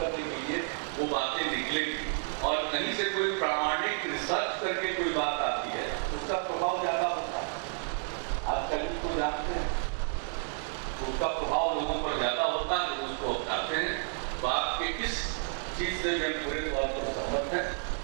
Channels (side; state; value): left; silent; 56 dB below the other